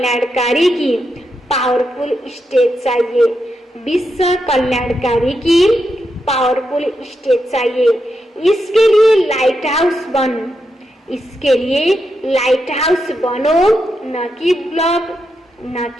की पावरफुल स्टेज चाहिए। विश्व कल्याणकारी की पावरफुल स्टेज चाहिए। इसके लिए लाइट हाउस बन, इसके लिए लाइट हाउस बनो, न कि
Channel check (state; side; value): normal; both; correlation 0.84